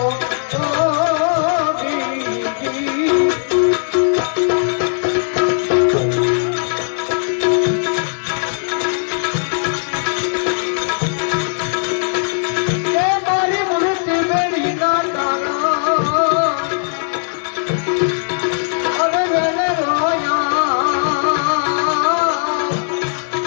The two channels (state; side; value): silent; right; 56 dB below the other